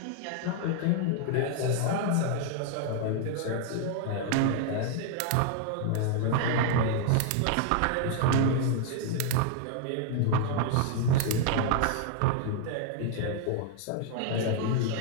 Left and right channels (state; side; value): different; both; correlation 0.00